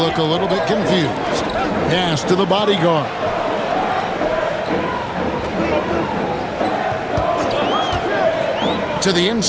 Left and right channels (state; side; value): identical; both; correlation 1.00